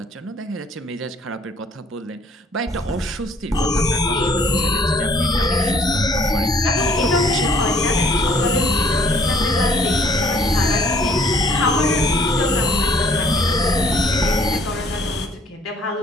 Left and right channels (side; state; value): both; normal; correlation 0.59